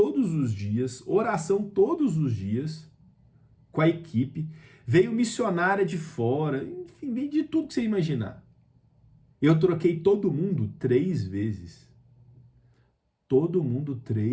os dias, oração todos os dias, com a equipe, veio missionária de fora, enfim, veio de tudo que você imaginar. Eu troquei todo mundo 3 vezes. Todo mundo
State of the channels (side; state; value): both; identical; correlation 1.00